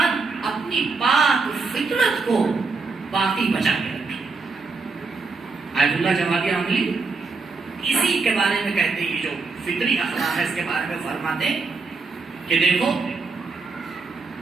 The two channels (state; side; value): quieter; left; 4.2 dB